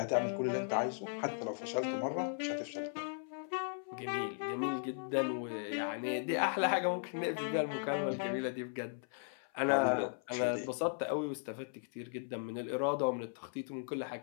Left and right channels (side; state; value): right; silent; 53 dB below the other